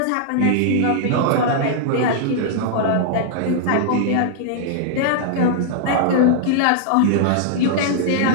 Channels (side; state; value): both; different; correlation -0.01